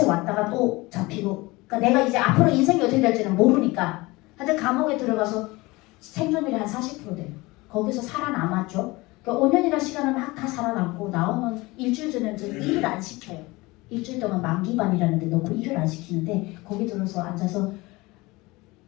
왔다가 또 잡히고 그러니까 내가 이제 앞으로 인생이 어떻게 될지는 모르니까 하여튼 감옥에 들어가서 생존율이 한 40% 돼요. 거기서 살아남았죠. 그러니까 5년이라는 시간을 막 다 살아남고 나오면 일주일 전에는 저는 일을 안 시켜요. 일주일 동안 만기반이라는 데 넣고 일을 안 시키는데 거기 들어서 앉아서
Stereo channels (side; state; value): right; quieter; 22.3 dB